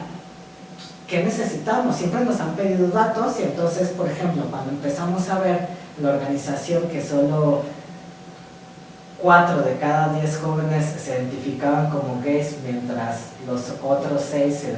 ¿qué necesitamos? Siempre nos han pedido datos y entonces, por ejemplo, cuando empezamos a ver la organización que solo 4 de cada 10 jóvenes se identificaban como gays, mientras los otros 6 se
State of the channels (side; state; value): both; identical; correlation 1.00